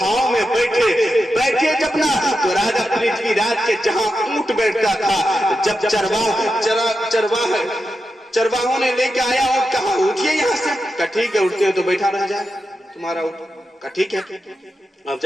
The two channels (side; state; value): both; normal; correlation 0.89